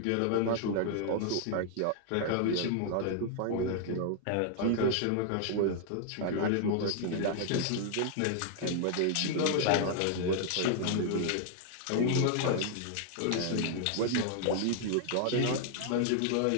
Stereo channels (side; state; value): both; different; correlation 0.00